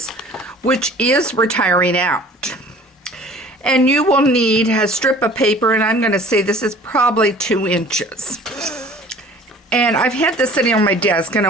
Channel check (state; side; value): normal; both; correlation 0.48